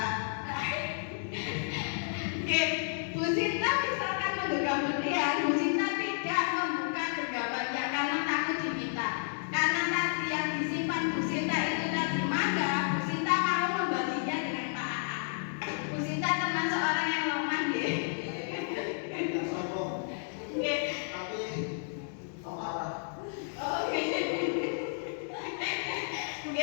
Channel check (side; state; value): right; silent; digital silence